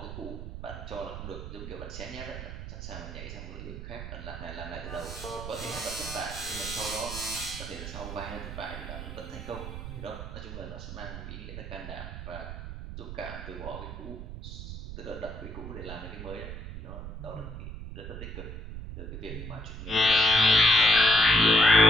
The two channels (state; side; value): noise; right; rumble, 9 dB below the sound